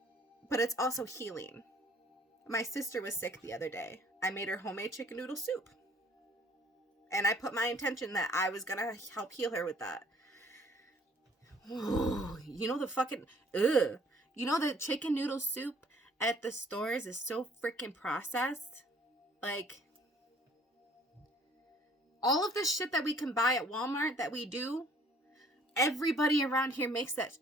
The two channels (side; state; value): both; normal; correlation 0.57